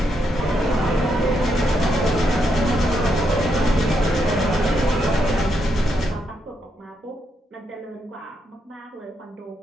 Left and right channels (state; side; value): normal; both; correlation 0.79